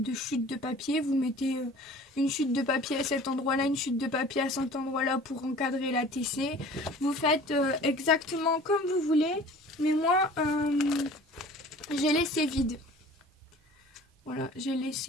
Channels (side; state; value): both; normal; correlation 0.45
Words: chutes de papier. Vous mettez une chute de papier à cet endroit-là, une chute de papier à cet endroit-là pour encadrer la TC. Vous faites exactement comme vous voulez, mais moi j'ai laissé vide. Voilà, j'ai